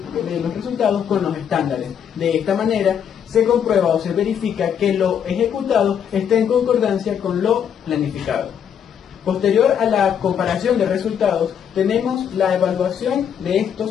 con los estándares. De esta manera se comprueba o se verifica que lo ejecutado está en concordancia con lo planificado. Posterior a la comparación de resultados, tenemos la evaluación de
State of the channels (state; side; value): quieter; right; 8.4 dB